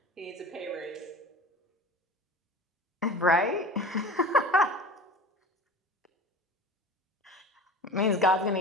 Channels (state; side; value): normal; both; correlation 0.36